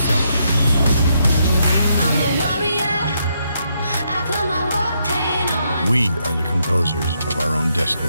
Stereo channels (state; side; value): inverted; both; correlation -0.77